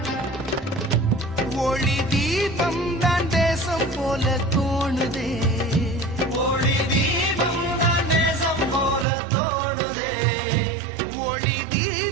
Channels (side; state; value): left; drops out; at 9.1 s